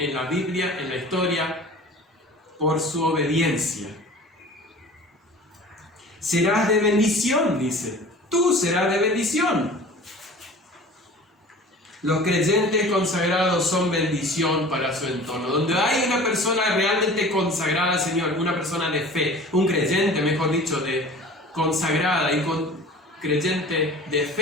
la Biblia, en la historia, por su obediencia? Serás de bendición, dice. Tú serás de bendición. Los creyentes consagrados son bendición para su entorno. Donde hay una persona realmente consagrada al Señor, una persona de fe, un creyente, mejor dicho, de consagrada y creyente de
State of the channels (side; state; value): both; normal; correlation 0.42